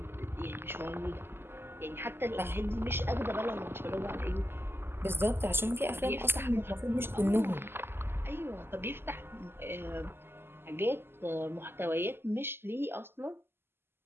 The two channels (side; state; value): left; late; 0.11 ms